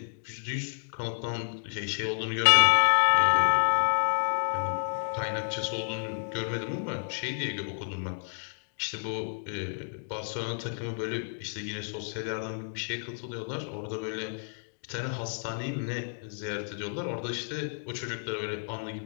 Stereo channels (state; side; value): silent; right; digital silence